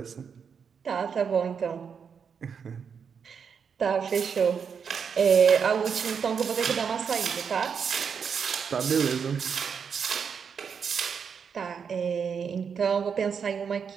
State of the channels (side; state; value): left; quieter; 6.6 dB